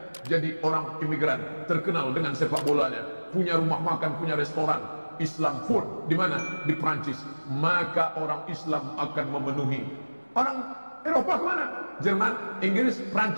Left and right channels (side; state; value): both; inverted; correlation -1.00